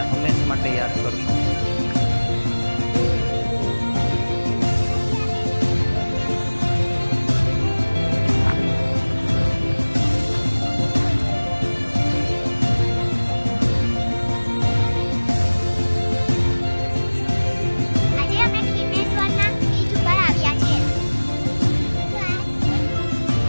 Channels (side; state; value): both; inverted; correlation -1.00